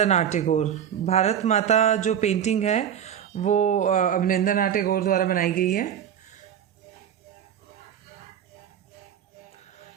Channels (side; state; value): left; quieter; 9.3 dB